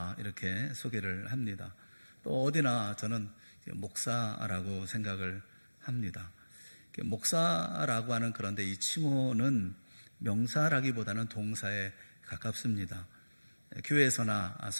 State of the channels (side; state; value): both; inverted; correlation -1.00